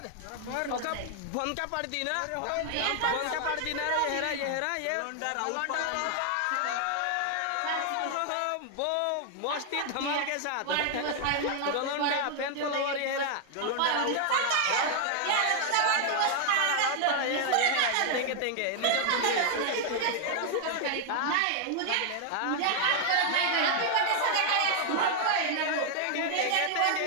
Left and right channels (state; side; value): different; both; correlation 0.00